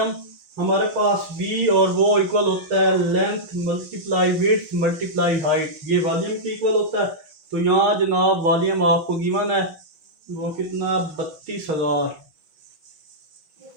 हमारे पास v और वो इक्वल होता है length multiply width multiply height, ये वॉल्यूम की इक्वल होता है। तो यहाँ जनाब वॉल्यूम आपको गिवन है वो कितना 32,000,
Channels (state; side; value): late; left; 5.9 ms